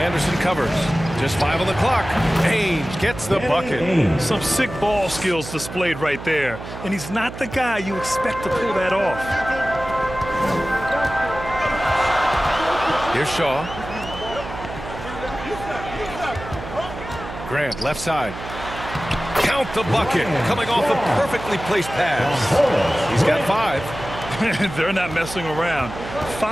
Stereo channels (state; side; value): noise; right; hum, 11 dB below the sound